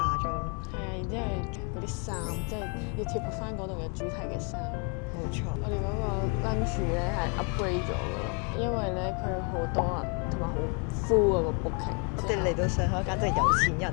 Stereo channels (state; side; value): quieter; right; 36.4 dB